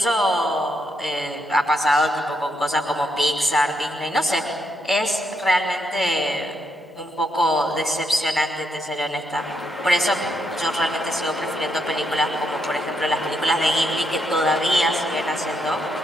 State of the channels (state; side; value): normal; both; correlation 0.78